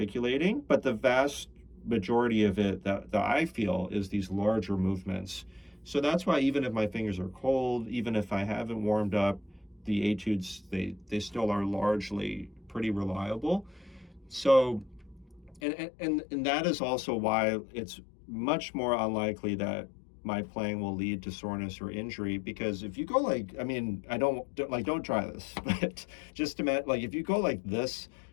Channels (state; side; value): drops out; right; at 15.6 s